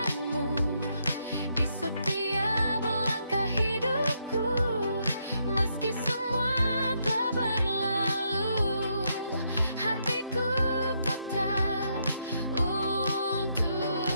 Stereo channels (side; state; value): both; inverted; correlation -0.77